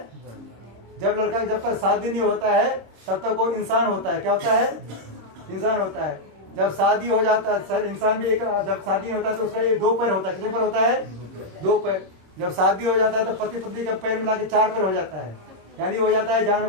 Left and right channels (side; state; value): left; late; 27 ms